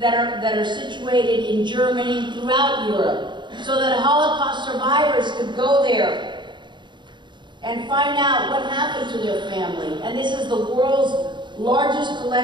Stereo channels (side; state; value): left; late; 0.22 ms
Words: are situated in Germany and throughout Europe, so that Holocaust survivors could go there and find out what happened to their family. And this is the world's largest